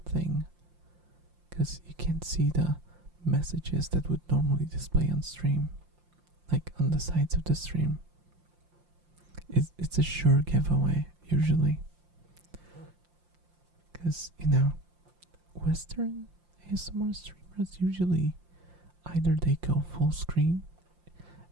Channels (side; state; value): left; late; 5.7 ms